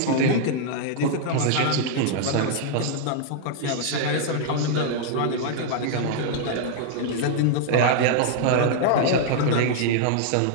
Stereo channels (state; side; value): different; both; correlation -0.01